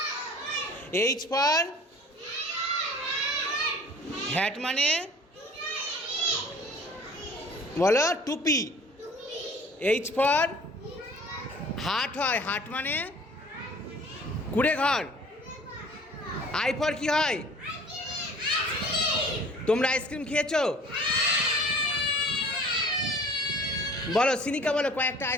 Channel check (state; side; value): normal; both; correlation 0.48